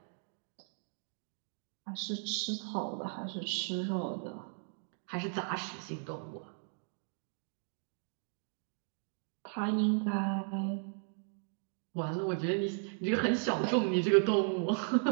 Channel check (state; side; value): silent; left; 54 dB below the other